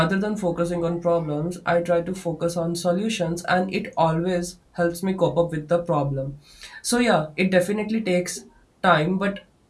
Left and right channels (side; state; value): both; identical; correlation 1.00